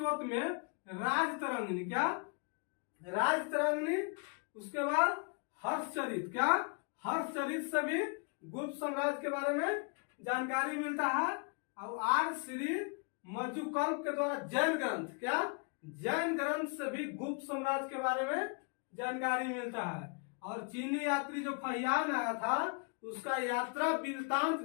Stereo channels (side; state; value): right; quieter; 36.2 dB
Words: में राजतरंगिणी, क्या राजतरंगिणी। उसके बाद हर्षचरित, क्या हर्षचरित से भी गुप्त साम्राज्य के बारे में जानकारी मिलता है। और आर श्री मजुकल्प के द्वारा जैन ग्रंथ, क्या जैन ग्रंथ से भी गुप्त साम्राज्य के बारे में जानकारी मिलता है। और चीनी यात्री जो फहियान आया था उसका यात्रा वृत्तांत